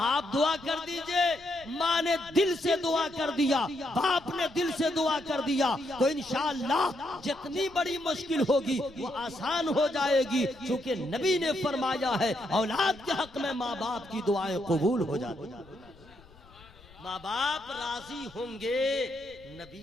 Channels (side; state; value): left; noise; rumble, 24 dB below the sound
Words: دعا کر دیجئے، ماں نے دل سے دعا کر دیا، باپ نے دل سے دعا کر دیا تو انشاءاللہ جتنی بڑی مشکل ہوگی وہ آسان ہو جائے گی، چونکہ نبی نے فرمایا ہے اولاد کے حق میں ماں باپ کی دعائیں قبول ہو جاتی ہیں، ماں باپ راضی ہوں گے